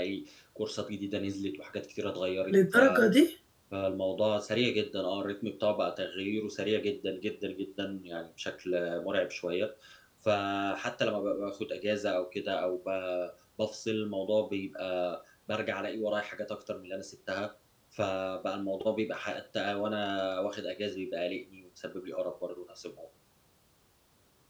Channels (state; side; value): identical; both; correlation 1.00